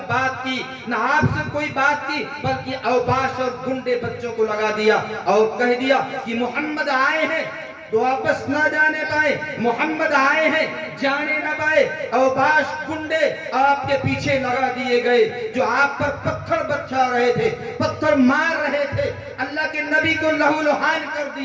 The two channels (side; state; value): both; identical; correlation 1.00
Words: بات کی، نہ آپ سے کوئی بات کی، بلکہ اوباش اور گنڈے بچوں کو لگا دیا اور کہہ دیا کہ محمد آئے ہیں تو واپس نہ جانے پائے، محمد آئے ہیں جانے نہ پائے۔ اوباش گنڈے آپ کے پیچھے لگا دیے گئے جو آپ پر پتھر برسا رہے تھے، پتھر مار رہے تھے، اللہ کے نبی کو لہو لہان کر